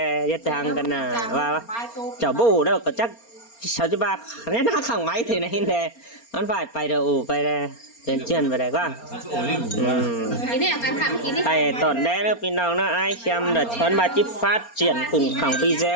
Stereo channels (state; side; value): late; right; 4.3 ms